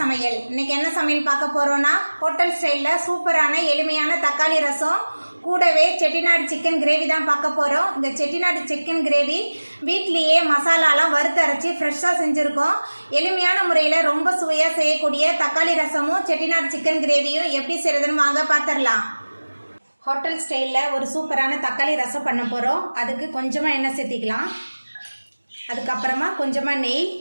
इनके என்ன சமையல் பார்க்க போறோம்னா ஹோட்டல் ஸ்டைல்ல சூப்பரான எளிமையான தக்காளி ரசம் கூடவே செட்டிநாடு சிக்கன் கிரேவி தான் பார்க்க போறோம். இந்த செட்டிநாடு சிக்கன் கிரேவி வீட்லயே மசாலாலாம் வறுத்து அரைச்சி ஃப்ரெஷ்ஷா செஞ்சிருக்கோம். எளிமையான முறையில் ரொம்ப சுவையா செய்யக்கூடிய தக்காளி ரசமும் செட்டிநாடு சிக்கன் கிரேவியும் எப்படி செய்யறதுன்னு வாங்க பார்த்துடலாம். ஹோட்டல் ஸ்டைல்ல ஒரு சூப்பரான தக்காளி ரசம் பண்ண போறோம். அதுக்கு கொஞ்சமா எண்ணெய் சேர்த்திக்கலாம். அதுக்கப்புறமா கொஞ்சமா நெய்.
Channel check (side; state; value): both; inverted; correlation -1.00